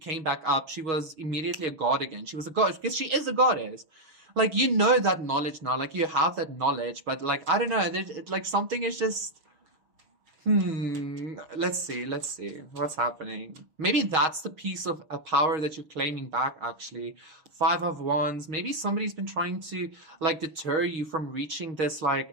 back up, she was immediately a god again. She was a goddess because she is a goddess. Like you know that knowledge now, like you have that knowledge, but like I don't know, like something is just. Let's see what's happening. Maybe that's the piece of a power that you're claiming back, actually. 5 of Wands. Maybe somebody's been trying to like deter you from reaching this like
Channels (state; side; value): late; left; 6.3 ms